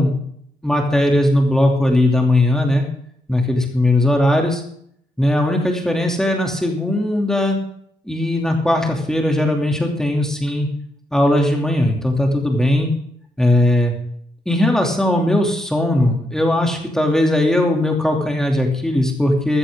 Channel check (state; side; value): normal; both; correlation 0.82